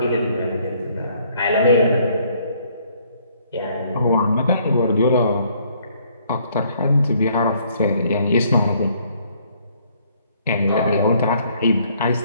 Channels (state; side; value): inverted; both; correlation -0.64